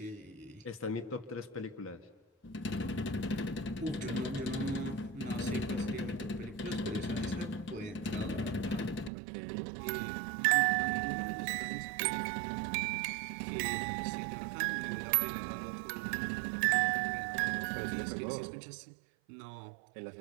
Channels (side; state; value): left; drops out; at 9.1 s